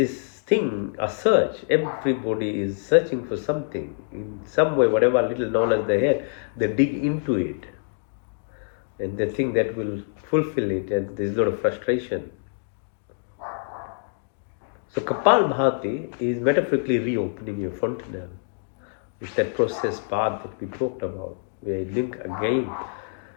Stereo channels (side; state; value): right; silent; digital silence